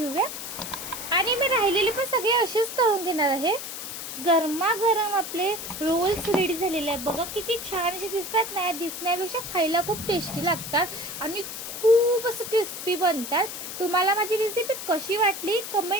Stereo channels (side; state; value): left; noise; hiss, 8 dB below the sound